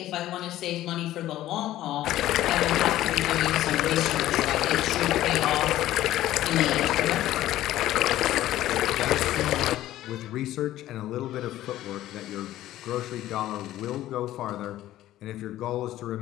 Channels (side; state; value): right; quieter; 14.2 dB